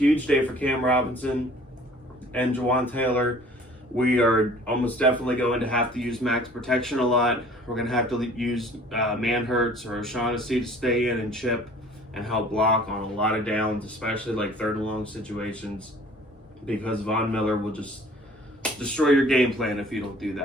day for Cam Robinson and Jawan Taylor. We are almost definitely going to have to use max protection a lot. We're going to have to use Manhurts or O'Shaughnessy to stay in and chip and help block on a lot of downs, especially like 3rd and long situations, because Von Miller will just destroy your game plan if you don't do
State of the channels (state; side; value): normal; both; correlation 0.51